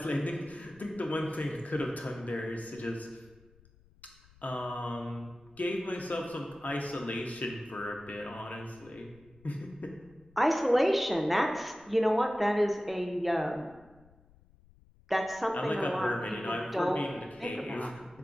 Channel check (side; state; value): left; noise; rumble, 27 dB below the sound